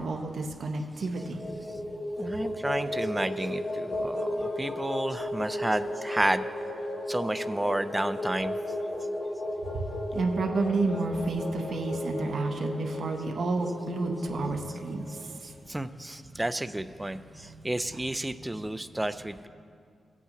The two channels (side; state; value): both; normal; correlation 0.92